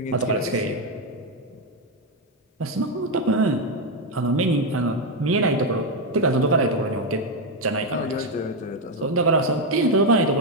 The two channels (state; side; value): normal; both; correlation 0.06